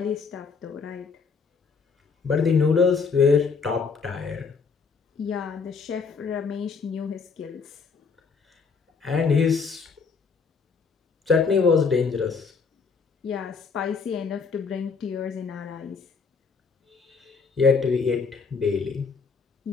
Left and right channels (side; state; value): right; quieter; 5.2 dB